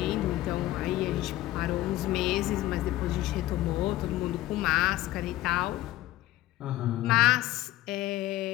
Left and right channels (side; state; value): right; quieter; 15.9 dB